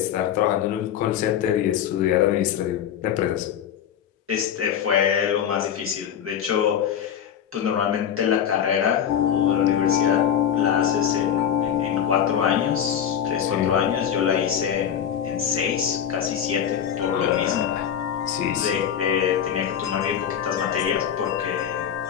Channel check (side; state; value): right; quieter; 9.1 dB